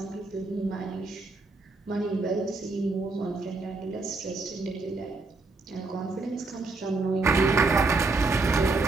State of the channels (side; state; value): left; quieter; 3.6 dB